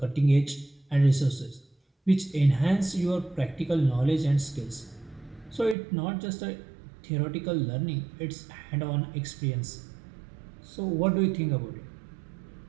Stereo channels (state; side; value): drops out; left; at 5.8 s